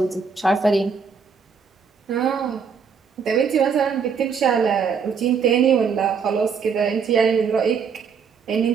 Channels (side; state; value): left; quieter; 6.1 dB